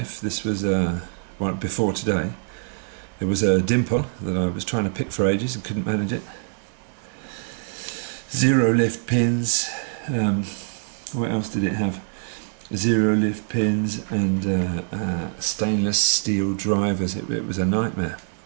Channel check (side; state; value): left; silent; digital silence